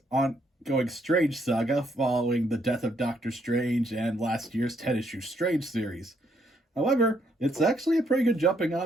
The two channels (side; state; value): both; normal; correlation 0.72